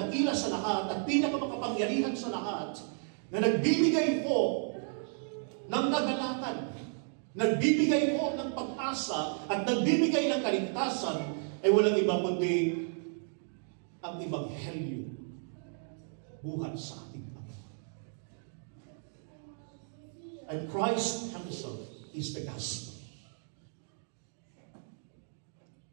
sa lahat at pinakamakapangyarihan sa lahat na nagbibigay po ng kagalatan, nagbibigay po ng pag-asa at nagbibigay ng kaligtasan ay walang iba kundi ang Ebanghelyo buhat sa ating Panginoon. And Christ Himself is the gospel.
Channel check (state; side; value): silent; left; 55 dB below the other